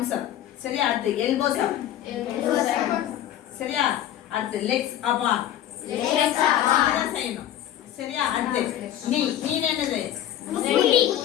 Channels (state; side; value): quieter; right; 11.8 dB